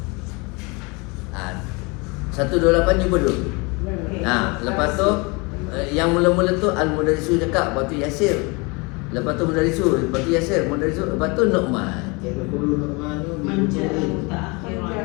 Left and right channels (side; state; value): right; quieter; 28.1 dB